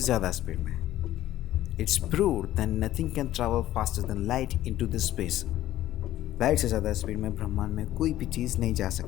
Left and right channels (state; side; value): quieter; right; 13.9 dB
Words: ज़्यादा स्पीड में। It's proved that nothing can travel faster than light into the space. Light से ज़्यादा स्पीड में ब्रह्मांड में कोई भी चीज़ नहीं जा